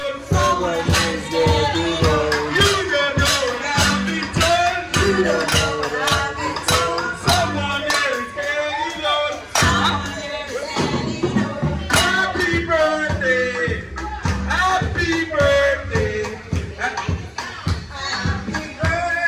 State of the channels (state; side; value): identical; both; correlation 1.00